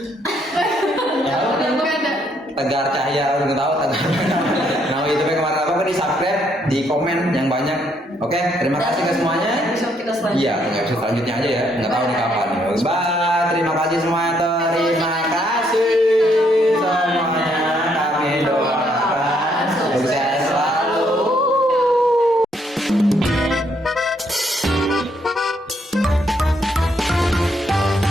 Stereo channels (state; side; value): normal; both; correlation 0.72